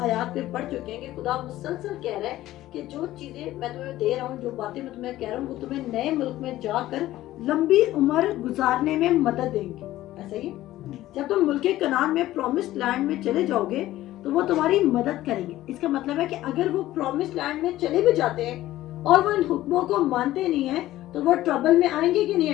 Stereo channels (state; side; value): quieter; right; 15.1 dB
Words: पे पढ़ चुके हैं कि खुदा मुसलसल कह रहा है कि जो चीजें मैं तुम्हें दे रहा हूँ, जो बातें मैं तुम्हें कह रहा हूँ, वो तुम्हें नए मुल्क में जाकर लंबी उम्र गुजारने में मदद देंगे। ऐसा ही जब तुम मुल्क कनान में प्रॉमिस्ड लैंड में चले जाओगे तो वो तुम्हारी मदद करेंगे। इसका मतलब है कि अगर वो प्रॉमिस्ड लैंड में चले भी जाते हैं और वो इन हुक्मों को मानते नहीं है तो वो ट्रबल में आएंगे कि नहीं